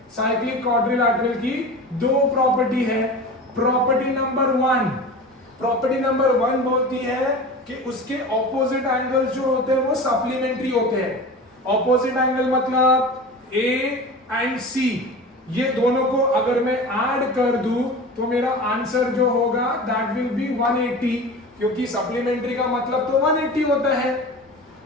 साइक्लिक क्वाड्रिलैटरल की दो प्रॉपर्टी है। प्रॉपर्टी नंबर 1 बोलती है कि उसके ऑपोजिट एंगल्स जो होते हैं वो सप्लीमेंट्री होते हैं। ऑपोजिट एंगल मतलब ए एंड सी, ये दोनों को अगर मैं ऐड कर दूं तो मेरा आंसर जो होगा दैट विल बी 180, क्योंकि सप्लीमेंट्री का मतलब तो 180 होता है।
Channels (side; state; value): both; normal; correlation 0.33